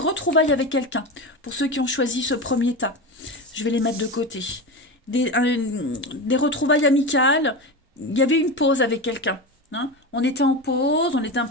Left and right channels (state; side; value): normal; both; correlation 0.22